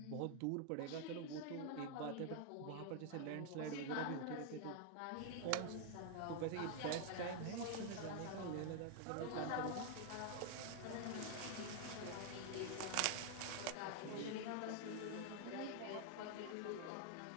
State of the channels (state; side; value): different; both; correlation 0.00